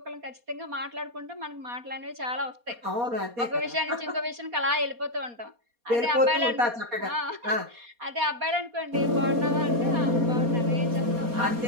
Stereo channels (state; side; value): late; left; 4.2 ms